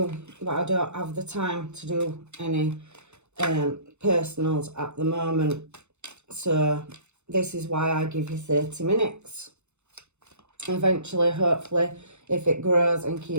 but I don't have the time to do any personals at the moment. So this is why I give you 30 minutes. Eventually, hopefully, if it grows and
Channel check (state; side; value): late; left; 0.82 ms